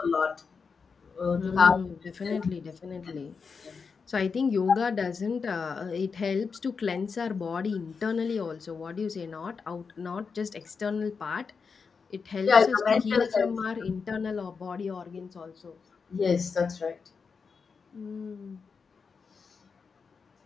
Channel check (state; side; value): quieter; right; 5.4 dB